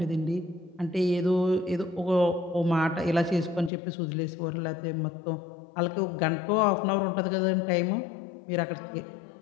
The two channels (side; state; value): right; drops out; at 3.7 s